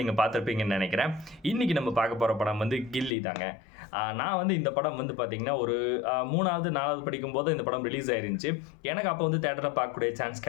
நீங்க பார்த்திருப்பீங்கன்னு நெனைக்கிறேன். இன்னைக்கு நம்ம பார்க்க போற படம் வந்து கில்லி தாங்க. நான் வந்து இந்த படம் வந்து பார்த்தீங்கன்னா, ஒரு 3வது, 4வது படிக்கும்போது இந்த படம் ரிலீஸ் ஆயிருந்துச்சு. எனக்கு அப்போ வந்து தியேட்டர்ல பார்க்கக்கூடிய சான்ஸ்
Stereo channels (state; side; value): drops out; right; at 3.1 s